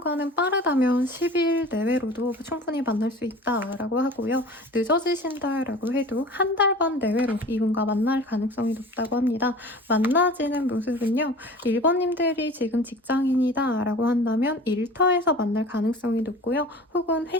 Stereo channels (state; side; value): normal; both; correlation 0.40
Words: 빠르다면 10일 내외로도 충분히 만날 수 있다라고 하고요. 늦어지신다라고 해도 한 달 반 내외로 이분과 만날 가능성이 높다고 합니다. 만나지는 모습은요. 1번님들이 지금 직장인이다라고 한다면 일터에서 만날 가능성이 높고요. 혹은